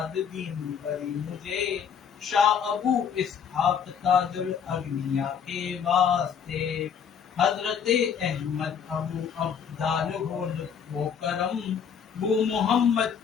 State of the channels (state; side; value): quieter; right; 7.3 dB